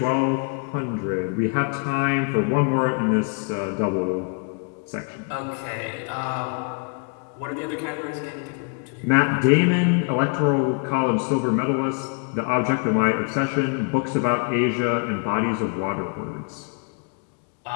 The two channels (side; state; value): right; quieter; 38.6 dB